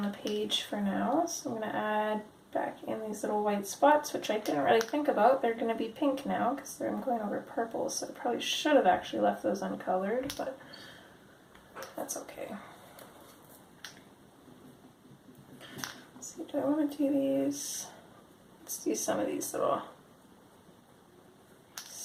the page for now. So I'm going to add back in these little white spots, which I didn't really think about. They're going to be pink now because I'm going over purple, so I probably should have actually left those uncolored, but that's okay. Let's see, do I want to do these? Let's do some of these little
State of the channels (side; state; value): both; identical; correlation 1.00